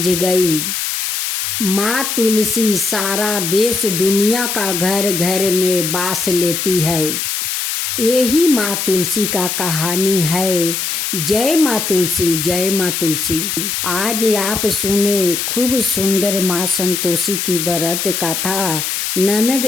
गई। माँ तुलसी सारा देश दुनिया का घर घर में बास लेती है। यही माँ तुलसी का कहानी है। जय माँ तुलसी, जय माँ तुलसी। आज आप सुने खूब सुंदर माँ संतोषी की व्रत कथा ननद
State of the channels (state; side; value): noise; left; hiss, 2 dB below the sound